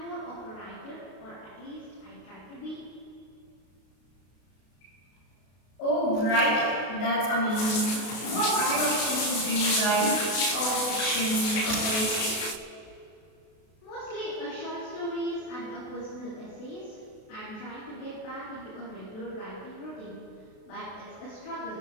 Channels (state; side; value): late; right; 32 ms